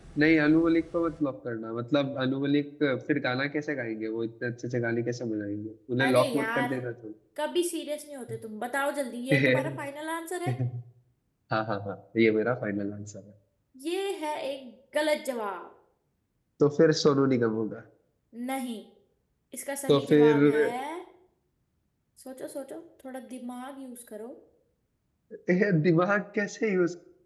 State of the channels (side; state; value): both; identical; correlation 1.00